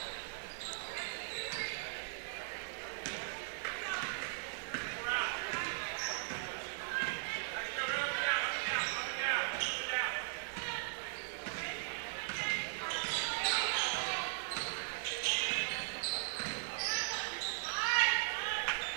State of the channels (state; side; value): silent; left; digital silence